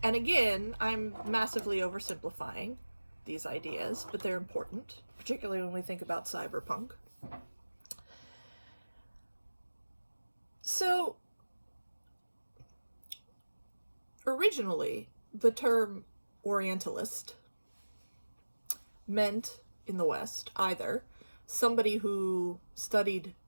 again, I'm massively oversimplifying these ideas, but they're important, particularly when we think about cyberpunk. So, originally, the term Orientalist meant in the West either somebody who studied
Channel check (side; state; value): both; inverted; correlation -1.00